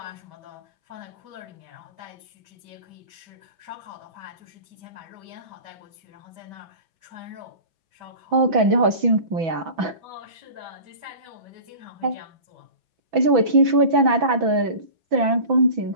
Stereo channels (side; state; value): left; late; 6.0 ms